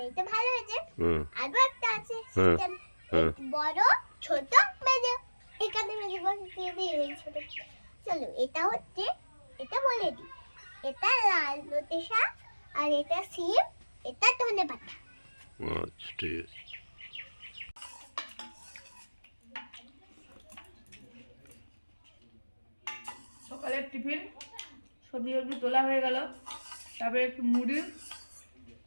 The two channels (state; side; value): inverted; both; correlation -1.00